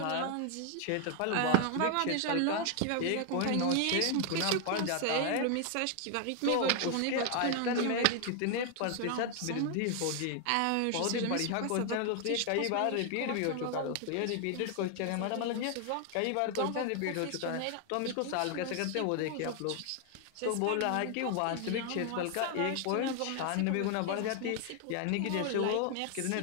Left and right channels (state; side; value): different; both; correlation 0.00